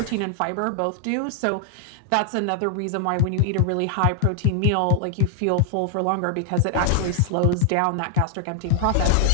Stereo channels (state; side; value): different; both; correlation 0.00